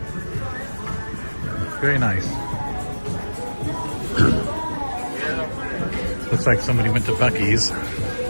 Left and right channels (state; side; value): inverted; both; correlation -1.00